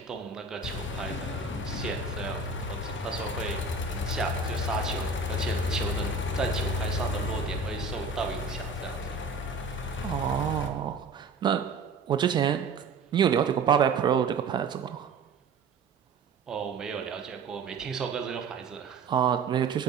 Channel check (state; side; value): quieter; left; 4.0 dB